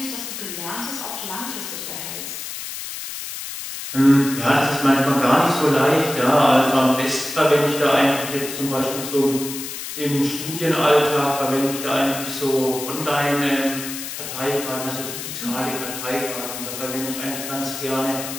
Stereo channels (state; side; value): noise; left; hiss, 8 dB below the sound